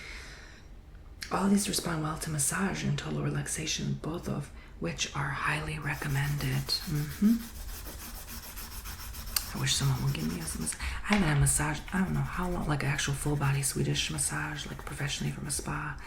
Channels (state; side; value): identical; both; correlation 1.00